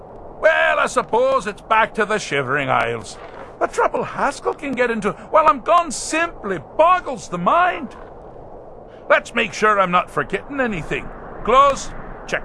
Well, I suppose it's back to the Shivering Isles. The trouble Haskell can get into while I'm gone simply boggles the mind. Let's make sure I'm not forgetting anything. Clothes, check.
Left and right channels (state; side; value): identical; both; correlation 1.00